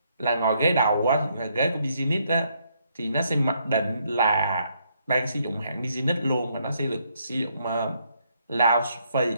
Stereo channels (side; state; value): both; inverted; correlation -0.72